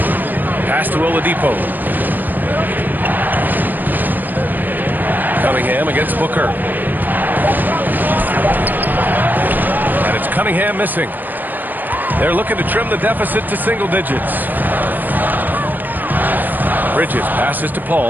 Pass to Oladipo. Cunningham against Booker. And it's Cunningham missing. They're looking to trim the deficit to single digits. Bridges passes to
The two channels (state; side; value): late; left; 0.089 ms